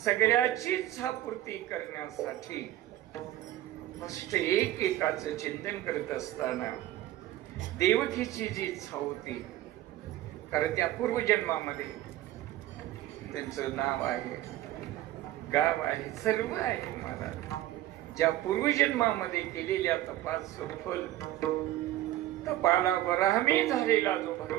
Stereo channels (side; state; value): left; quieter; 14.5 dB